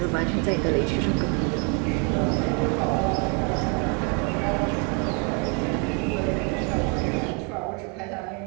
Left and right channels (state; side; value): quieter; left; 31.5 dB